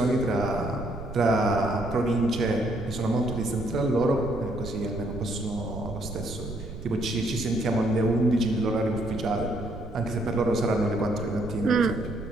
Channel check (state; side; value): noise; right; rumble, 11 dB below the sound